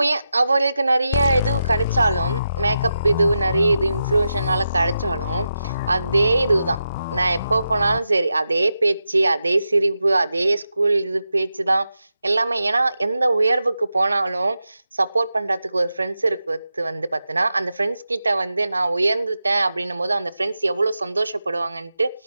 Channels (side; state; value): both; inverted; correlation -0.88